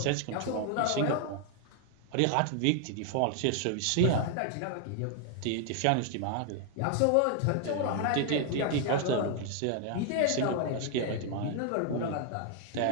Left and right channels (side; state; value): both; different; correlation 0.00